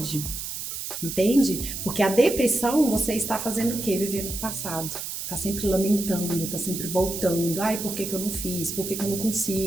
Entende? Porque a depressão, você está fazendo o quê? Vivendo no passado. Tá sempre lamentando, tá sempre voltando. Ai, por que eu não fiz? Por que eu não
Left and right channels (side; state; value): right; noise; hiss, 6 dB below the sound